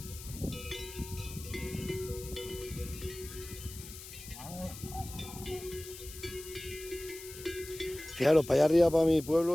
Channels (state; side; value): noise; left; hiss, 13 dB below the sound